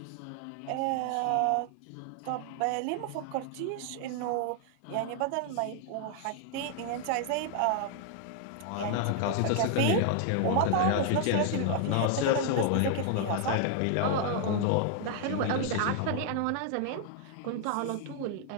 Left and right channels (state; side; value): different; both; correlation 0.00